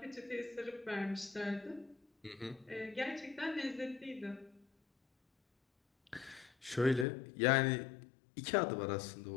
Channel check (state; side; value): drops out; right; at 7.1 s